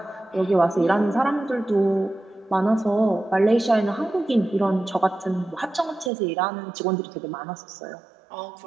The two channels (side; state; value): left; drops out; at 6.1 s